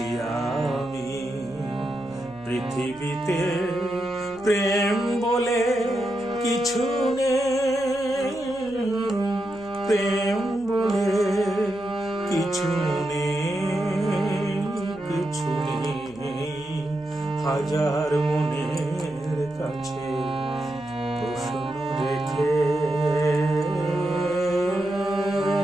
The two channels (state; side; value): noise; right; hum, 25 dB below the sound